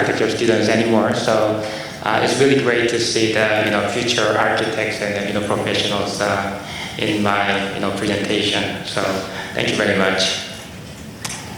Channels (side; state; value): both; identical; correlation 1.00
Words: students anymore, so it's really great to see the future architects and professionals in my presentation. So thank you very much.